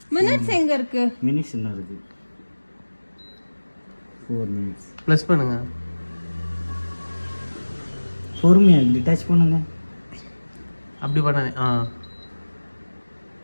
மினிட்ஸ் எங்க இருக்கு? மினிட்ஸ் என்ன இருக்கு? 4 மினிட்ஸ். ப்ளஸ் பண்ணுங்க. பொறுமையா டிட்டாச் பண்ணுங்க. அப்படி பண்ணாதே.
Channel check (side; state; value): both; inverted; correlation -1.00